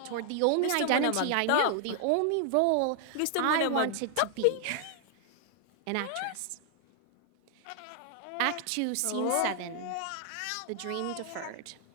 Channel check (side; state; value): both; different; correlation 0.00